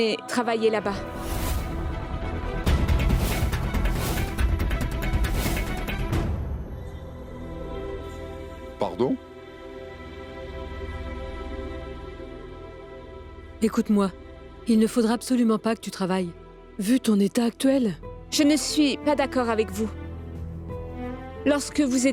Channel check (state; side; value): identical; both; correlation 1.00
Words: travailler là-bas. Pardon? Écoute-moi, il ne faudra absolument pas que tu travailles. Vu ton état actuel. Je ne suis pas d'accord avec vous. Lorsque vous